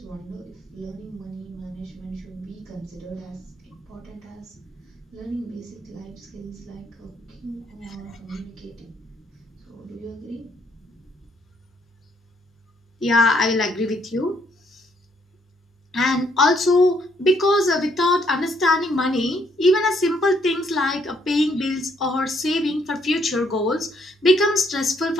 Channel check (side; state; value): both; normal; correlation 0.70